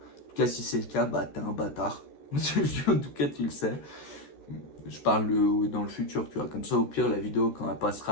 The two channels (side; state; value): right; late; 14 ms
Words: cas, si c'est le cas, bah t'es un bâtard. En tout cas, tu le sais. Je parle dans le futur, tu vois. Comme ça, au pire, la vidéo, quand elle